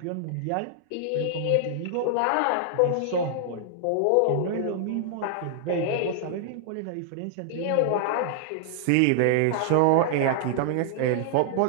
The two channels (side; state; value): both; different; correlation -0.01